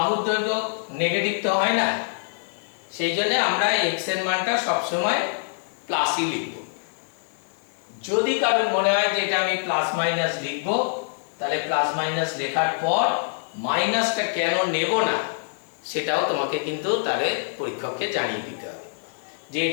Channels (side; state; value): right; silent; 61 dB below the other